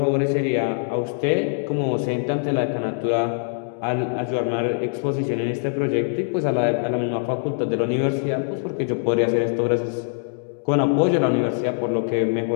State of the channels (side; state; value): right; silent; digital silence